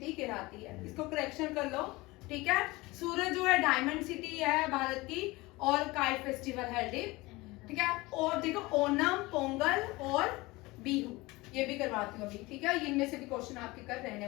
कहलाती है, इसको करेक्शन कर लो, ठीक है। सूरत जो है डायमंड सिटी है भारत की, और काइट फेस्टिवल है, ठीक है। और देखो ओनम, पोंगल और बिहू, ये भी करवाती हूँ अभी, ठीक है। इनमें से भी क्वेश्चन आपके कर रहने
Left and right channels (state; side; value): quieter; right; 21.6 dB